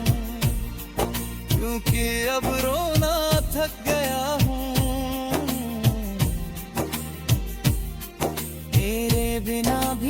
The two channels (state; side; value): identical; both; correlation 1.00